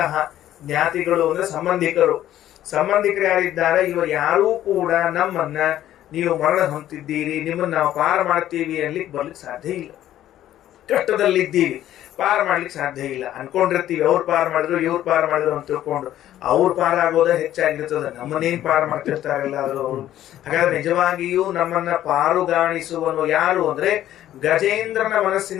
ಜ್ಞಾತಿಗಳು ಅಂದ್ರೆ ಸಂಬಂಧಿಕರು. ಸಂಬಂಧಿಕರು ಯಾರಿದ್ದಾರೆ, ಇವರು ಯಾರೂ ಕೂಡ ನಮ್ಮನ್ನ ನೀವು ಮರಣ ಹೊಂದಿದ್ದೀರಿ, ನಿಮ್ಮನ್ನ ನಾವು ಪಾರ ಮಾಡ್ತೀವಿ ಅನ್ಲಿಕ್ಕೆ ಬರ್ಲಿಕ್ಕೆ ಸಾಧ್ಯ ಇಲ್ಲ. ಕಷ್ಟದಲ್ಲಿದ್ದೀವಿ, ಪಾರ ಮಾಡ್ಲಿಕ್ಕೆ ಸಾಧ್ಯ ಇಲ್ಲ. ಅನ್ಕೊಂಡಿರ್ತೀವಿ ಅವ್ರು ಪಾರ ಮಾಡಿದ್ರು, ಇವ್ರು ಪಾರ ಮಾಡಿದ್ರು ಅಂತ ತಿಳ್ಕೊಂಡು ಅವ್ರು ಪಾರ ಆಗೋದ ಹೆಚ್ಚಾಗಿರ್ತದೆ, ನಮ್ಮನ್ನೇನ್ ಪಾರ ಮಾಡ್ತಿರ್ತಾರಲ್ಲ ಅವರು. ಹಾಗಾದ್ರೆ ನಿಜವಾಗಿಯೂ ನಮ್ಮನ್ನ ಪಾರುಗಾಣಿಸುವನು ಯಾರು ಅಂದ್ರೆ ಗಜೇಂದ್ರನ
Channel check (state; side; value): quieter; right; 12.5 dB